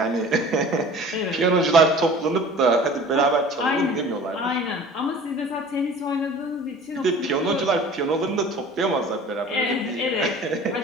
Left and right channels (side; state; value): both; normal; correlation 0.44